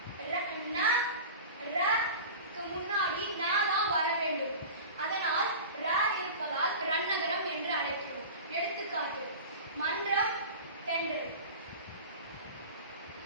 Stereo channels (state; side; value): inverted; both; correlation -0.33